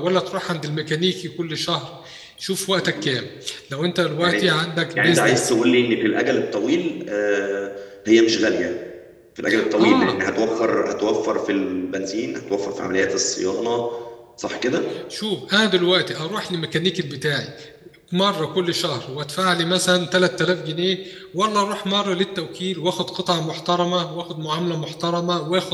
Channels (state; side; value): identical; both; correlation 1.00